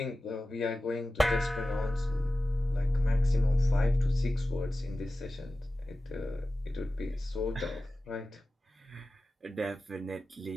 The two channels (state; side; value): normal; both; correlation 0.95